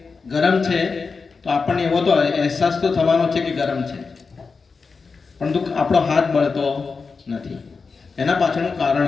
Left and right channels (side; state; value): right; quieter; 4.7 dB